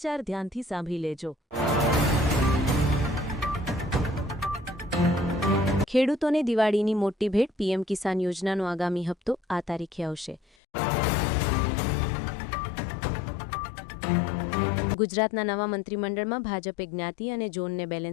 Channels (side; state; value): right; drops out; at 10.4 s